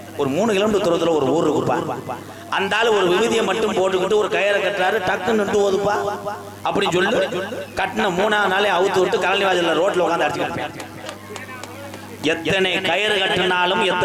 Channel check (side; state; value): both; identical; correlation 1.00